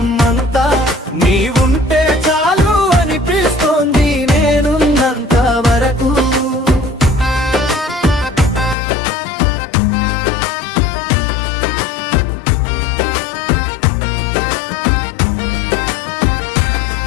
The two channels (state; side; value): drops out; right; at 8.8 s